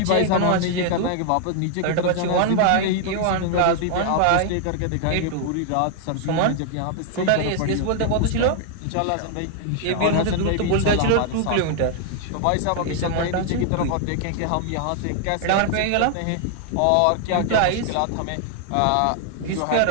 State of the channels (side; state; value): both; different; correlation 0.00